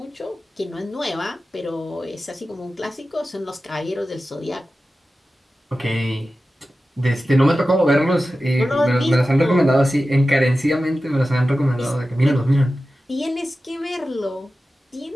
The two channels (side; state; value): both; normal; correlation 0.94